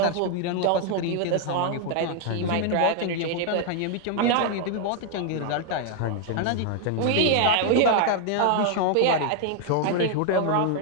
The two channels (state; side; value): different; both; correlation 0.00